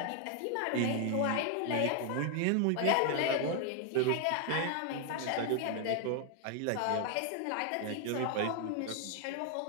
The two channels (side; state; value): both; different; correlation 0.00